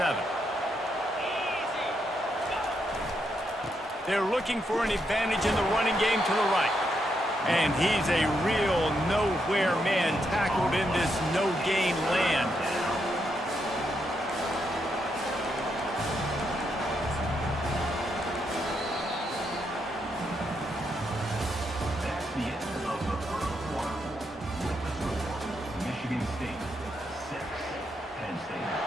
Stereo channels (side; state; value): both; normal; correlation 0.80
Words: They're looking for an advantage in the running game to the right. And he's a real nowhere man tackled in this no-gain land. That's the end of the first quarter. With the score, Michigan State 6, Penn State